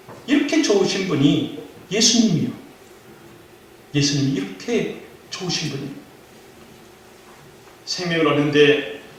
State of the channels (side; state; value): both; identical; correlation 1.00